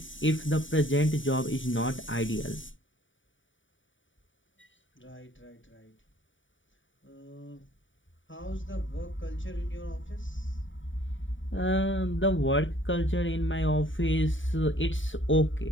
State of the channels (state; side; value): late; right; 0.56 ms